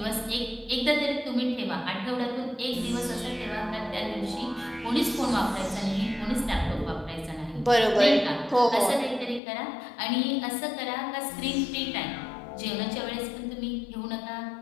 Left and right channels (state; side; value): drops out; right; at 9.4 s